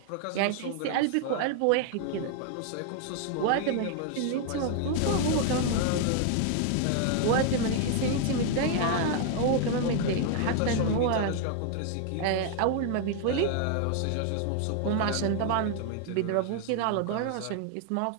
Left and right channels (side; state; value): both; different; correlation 0.00